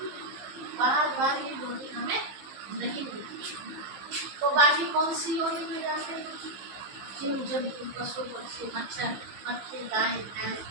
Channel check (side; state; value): left; late; 15 ms